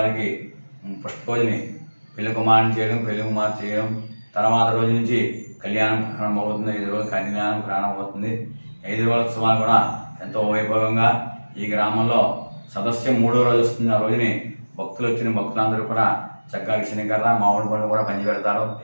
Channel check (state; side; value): inverted; both; correlation -1.00